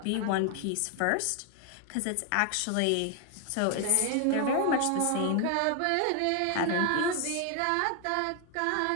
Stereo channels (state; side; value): different; both; correlation 0.01